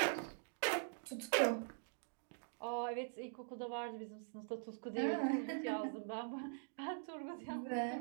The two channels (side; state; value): left; silent; digital silence